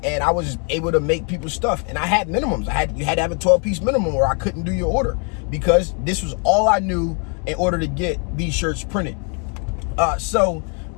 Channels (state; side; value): quieter; right; 38.4 dB